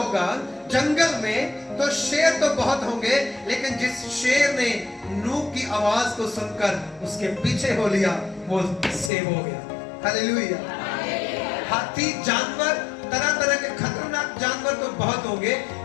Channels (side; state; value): right; drops out; at 9.1 s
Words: जंगल में, तो शेर तो बहुत होंगे, लेकिन जिस शेर ने नूह की आवाज को सुनकर उसके पीछे हो लिया, वो सेव हो गया। हालेलुया। हाथी, जानवर, तरह तरह के खतरनाक जानवर तो बहुत होंगे,